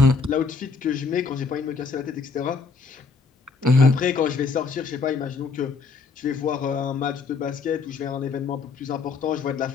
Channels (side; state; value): right; quieter; 4.6 dB